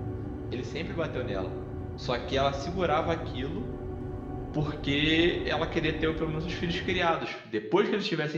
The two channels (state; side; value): identical; both; correlation 1.00